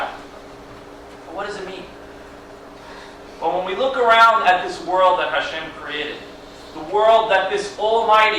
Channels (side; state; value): both; identical; correlation 1.00